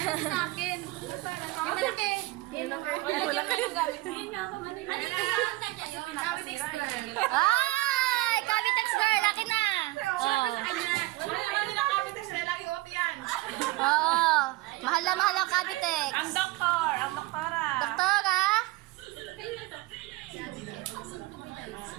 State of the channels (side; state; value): left; quieter; 19.9 dB